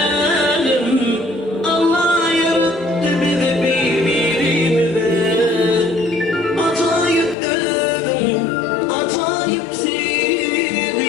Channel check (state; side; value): drops out; right; at 7.4 s